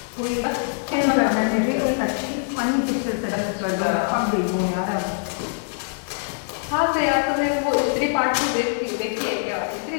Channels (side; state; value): right; silent; 63 dB below the other